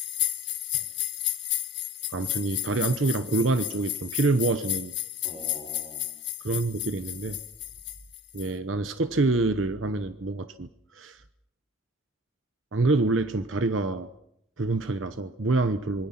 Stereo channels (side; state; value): both; normal; correlation 0.44